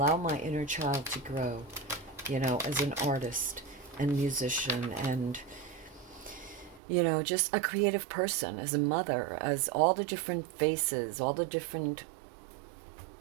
my inner child to grow, you know, as an artist and musician, and, you know, just a creative person, as a mother, as all the different faces, all the different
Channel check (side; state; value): left; drops out; at 6.8 s